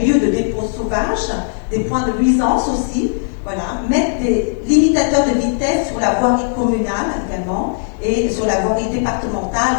lieux de dépôt sauvage, des points de nuisance aussi, voilà, mettre des limitateurs de vitesse sur la voirie communale également et sur la voirie départementale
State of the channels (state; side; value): silent; right; digital silence